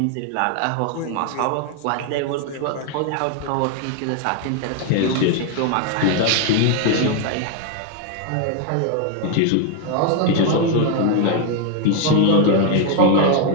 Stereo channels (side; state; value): both; different; correlation 0.00